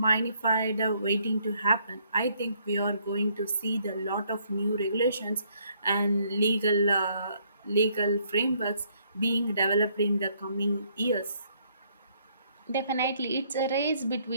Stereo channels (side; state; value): both; inverted; correlation -0.68